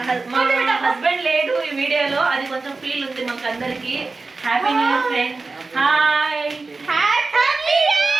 హస్బెండ్ లేడు ఈ వీడియోలో, అది కొంచెం ఫీల్ ఉంది మాకు అందరికి. Happy new year friend. Hi, happy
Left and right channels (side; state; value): left; quieter; 3.8 dB